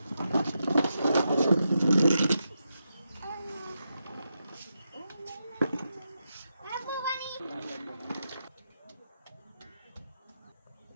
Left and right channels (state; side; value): inverted; both; correlation -0.86